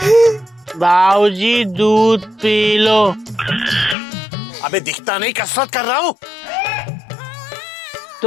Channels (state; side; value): drops out; right; at 4.0 s